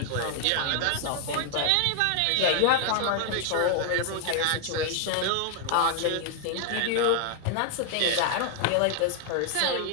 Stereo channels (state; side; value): different; both; correlation 0.00